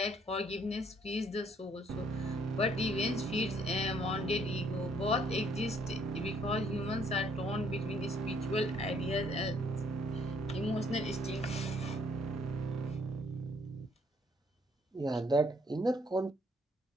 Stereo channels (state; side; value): normal; both; correlation 0.65